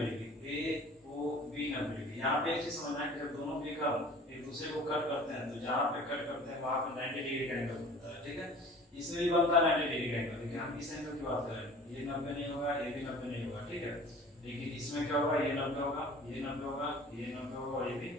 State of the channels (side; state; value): both; normal; correlation 0.45